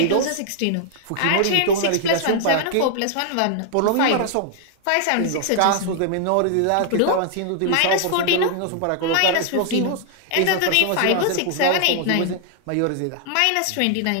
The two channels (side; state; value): both; different; correlation 0.00